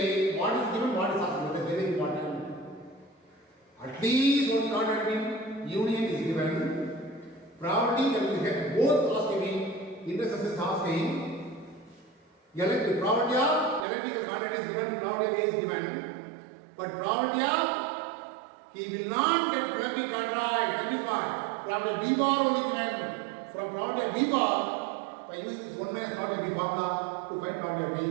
what is given, what is asked. That is very important. At least one contract union is given. Probability that we get both asking, intersection is asking. Probability of electrical contract is given, probability A is given. But probability of he will not get plumbing contract. That is what? Probability of B bar only given. From probability of B bar, by using this 1 minus probability of B formula to find probability of B,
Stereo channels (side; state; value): left; drops out; at 13.9 s